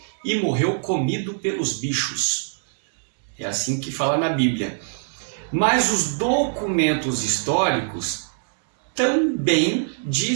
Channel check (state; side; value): silent; left; digital silence